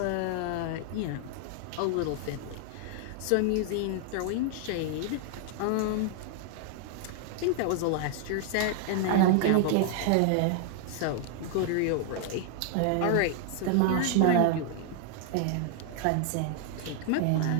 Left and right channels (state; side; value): different; both; correlation 0.00